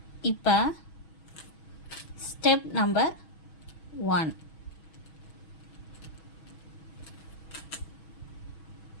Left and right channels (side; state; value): right; late; 6.2 ms